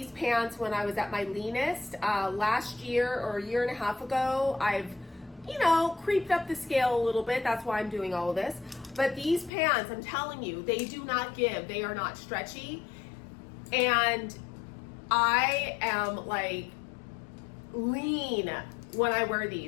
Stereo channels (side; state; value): right; drops out; at 9.5 s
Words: pants when I was at my leanest. Last year or a year and a half ago, I've creeped up the scale a little bit. That's why I'm doing all of this. But these pants, I'm telling you, they do not give. They are not stretchy. And I am like lean when I wear